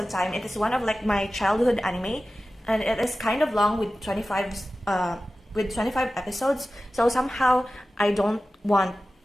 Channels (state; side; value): normal; both; correlation 0.95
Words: time. It is one of like my childhood anime, and it is kind of long with 25 episodes. So somehow I don't want